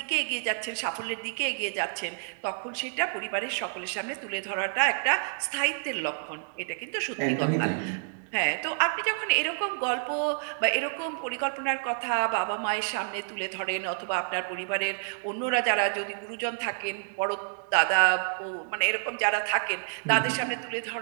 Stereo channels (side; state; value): left; silent; 59 dB below the other